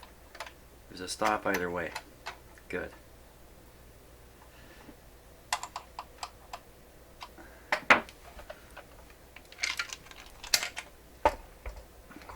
there's a stop either way. Good. Of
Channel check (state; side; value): identical; both; correlation 1.00